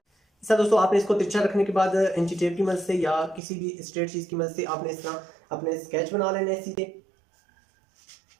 इस तरह दोस्तों आपने इसको तिरछा रखने के बाद इंची टेप की मदद से या किसी भी स्ट्रेट चीज की मदद से आपने इस तरह अपने स्केच बना लेने हैं सीधे।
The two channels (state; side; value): drops out; left; at 3.4 s